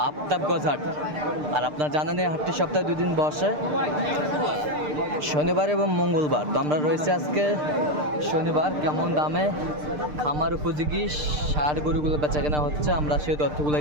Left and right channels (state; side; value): late; left; 6.7 ms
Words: আফতাবগঞ্জ হাট। আর আপনারা জানেন এই হাটটি সপ্তাহে 2 দিন বসে, শনিবার এবং মঙ্গলবার। তো আমরা রয়েছে আজকে শনিবার। কেমন দামে খামার উপযোগী ষাঁড় গরুগুলো বেচা কেনা হচ্ছে, আমরা সেই